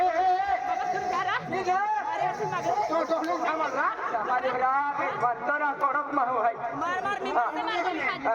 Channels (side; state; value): both; identical; correlation 1.00